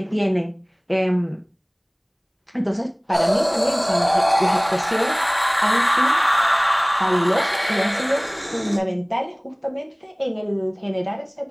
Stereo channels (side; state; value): both; identical; correlation 1.00